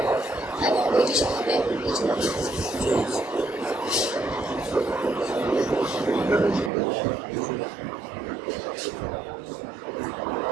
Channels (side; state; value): left; drops out; at 6.7 s